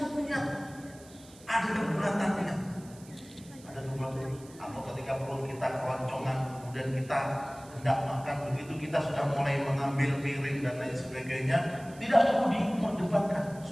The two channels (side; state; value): right; noise; hiss, 22 dB below the sound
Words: niat. Ada kebulatan niat. Ada kebulatan. Atau ketika perut kita keroncongan, kemudian kita hendak makan, begitu kita sudah mulai mengambil piring dan lain sebagainya, tidak perlu diperdebatkan